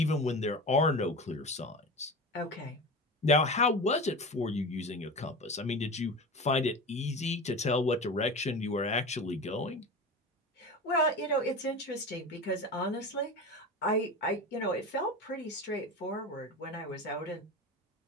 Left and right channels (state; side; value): normal; both; correlation 0.29